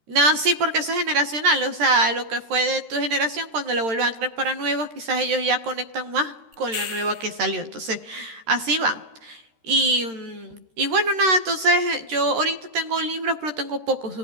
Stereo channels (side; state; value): left; late; 13 ms